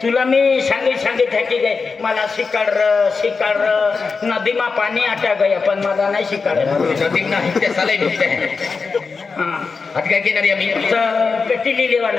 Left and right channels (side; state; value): right; quieter; 4.7 dB